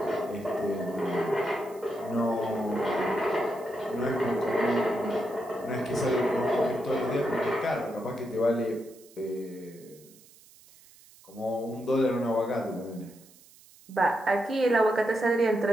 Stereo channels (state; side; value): noise; right; hiss, 25 dB below the sound